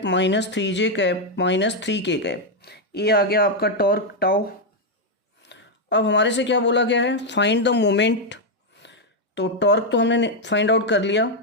-3j cap -3k cap. ये आ गया आपका टॉर्क टाउ। अब हमारे से क्या बोला गया है, फाइंड द मोमेंट। तो टॉर्क तो हमने फाइंड आउट कर लिया,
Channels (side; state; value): both; normal; correlation 0.01